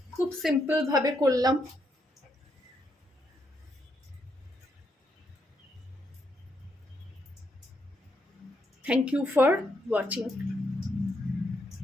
খুব সিম্পল ভাবে করলাম। Thank you for watching.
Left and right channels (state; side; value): normal; both; correlation 0.77